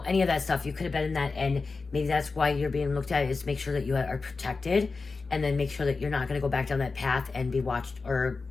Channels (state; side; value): quieter; right; 4.2 dB